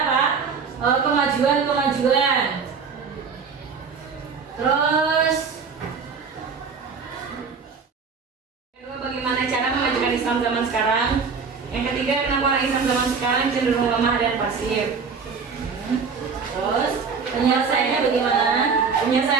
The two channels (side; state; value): left; quieter; 5.5 dB